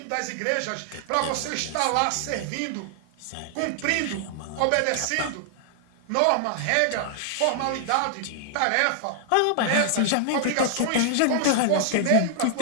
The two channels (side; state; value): both; different; correlation 0.00